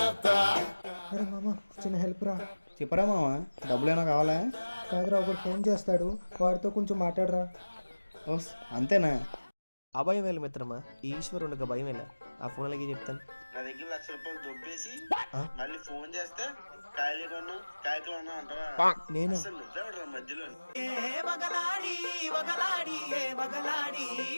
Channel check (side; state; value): both; inverted; correlation -1.00